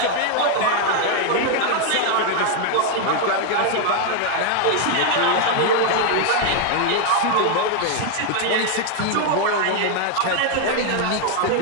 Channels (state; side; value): different; both; correlation 0.01